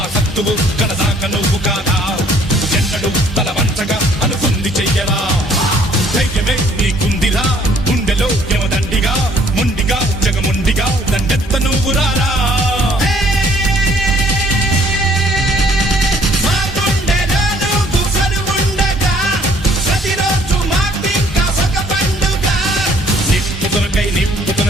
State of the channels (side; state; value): both; normal; correlation 0.60